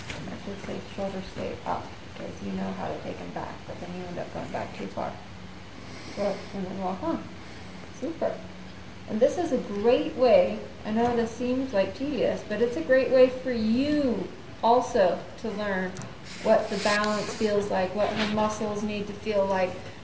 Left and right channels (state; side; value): identical; both; correlation 1.00